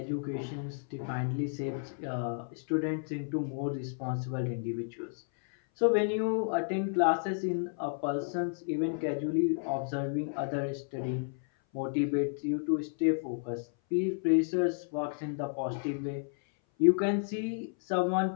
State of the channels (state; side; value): silent; right; 57 dB below the other